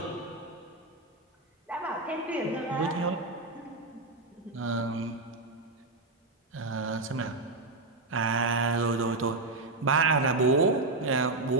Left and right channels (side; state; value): left; quieter; 3.2 dB